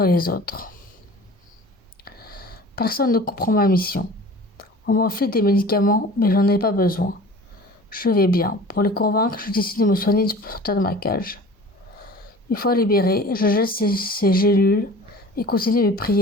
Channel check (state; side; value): normal; both; correlation 0.42